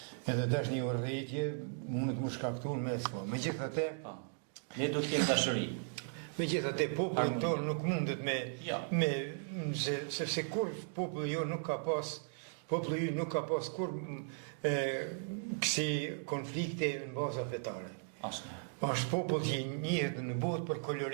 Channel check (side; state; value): left; silent; digital silence